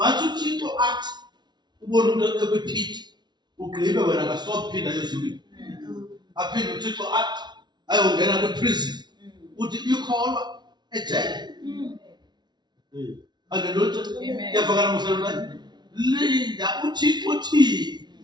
uThixo athi ubona umuntu ekwiphiti ugqibe wena kasophinda ezulwini. Aphinde uThixo athi ayongena kwi-prison. Uthi ikholwa ejele. Hallelujah. Yavakala msalwana. Linda uThixo uthi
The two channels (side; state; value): left; late; 0.20 ms